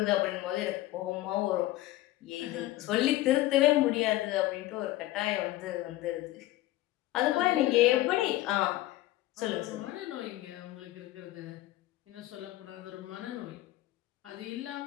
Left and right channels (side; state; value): right; quieter; 16.4 dB